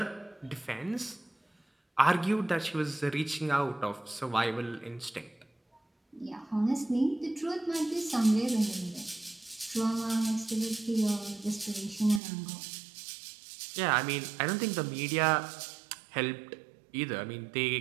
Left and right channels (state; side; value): drops out; left; at 12.2 s